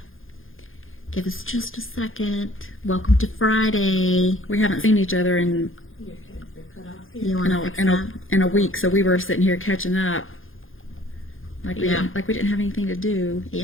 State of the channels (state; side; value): late; right; 0.59 ms